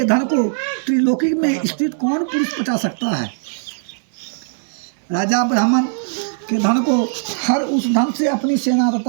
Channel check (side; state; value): left; silent; 66 dB below the other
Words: धन को त्रिलोकी में स्थित कौन पुरुष पचा सकता है। राजा ब्राह्मण के धन को हर उस धन से अपनी सेना